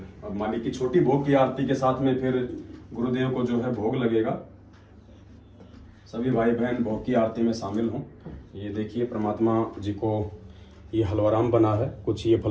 अब मालिक की छोटी भोग की आरती के साथ में फिर गुरुदेव को जो है भोग लगेगा। सभी भाई बहन भोग की आरती में शामिल हों। ये देखिए परमात्मा जी को ये हलवाराम बना है, कुछ ये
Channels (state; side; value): identical; both; correlation 1.00